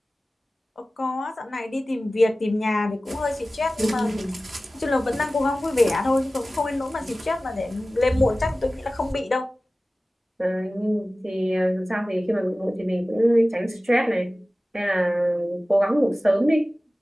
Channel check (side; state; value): both; normal; correlation 0.97